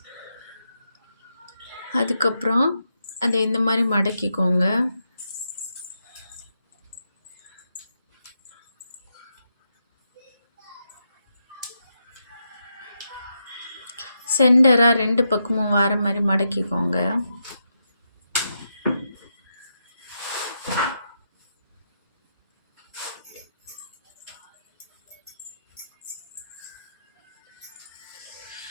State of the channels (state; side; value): inverted; both; correlation -0.84